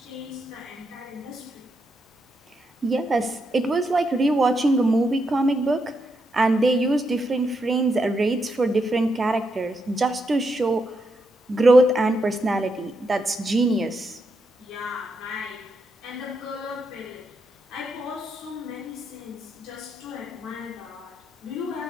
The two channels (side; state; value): both; normal; correlation 0.81